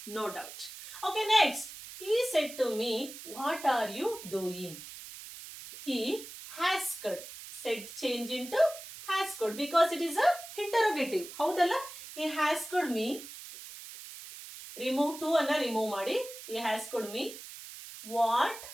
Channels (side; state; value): right; noise; hiss, 13 dB below the sound